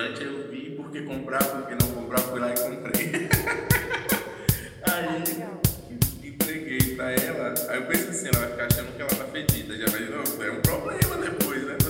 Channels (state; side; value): identical; both; correlation 1.00